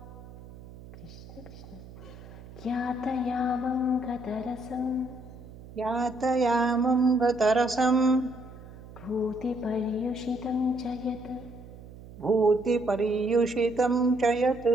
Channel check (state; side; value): noise; right; hum, 17 dB below the sound